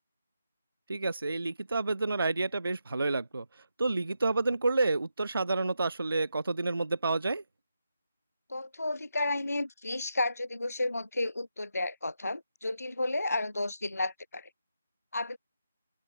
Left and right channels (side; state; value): both; inverted; correlation -0.86